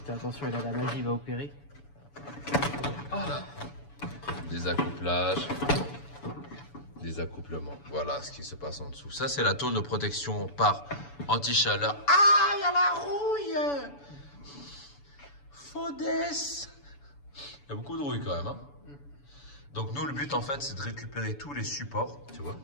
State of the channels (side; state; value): right; late; 7.0 ms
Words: Fais attention, il a la magie, il va opérer. Voilà. Des accouplages. Des accouplements. Voilà ce qui se passe en dessous. Ça, c'est la tôle de protection par anti-chaleur. Ah, il y a la rouille. Faudesse. Il y a beaucoup de rouille quand même. Hein. Donc nous, le but en fait, c'est de récupérer tous les supports, tu vois,